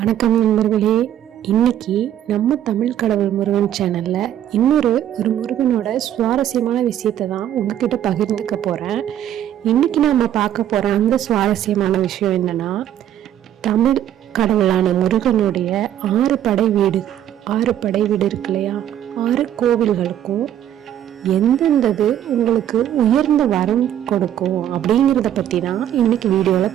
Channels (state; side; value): quieter; left; 11.1 dB